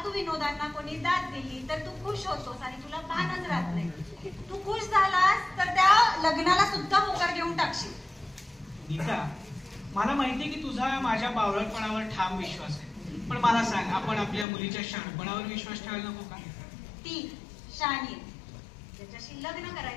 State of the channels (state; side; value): drops out; right; at 14.5 s